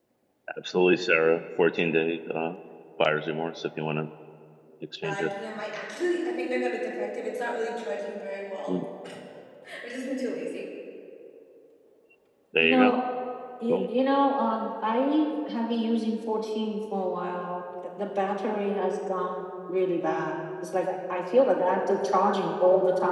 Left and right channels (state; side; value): identical; both; correlation 1.00